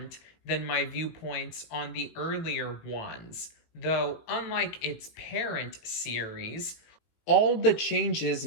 than my viewpoints on the earlier ones, though unlike its parent series, all the changes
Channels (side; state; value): right; late; 18 ms